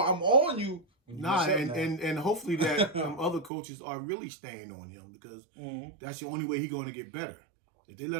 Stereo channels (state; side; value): drops out; left; at 3.5 s